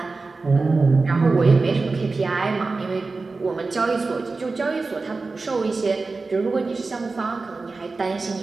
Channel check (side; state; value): left; quieter; 3.8 dB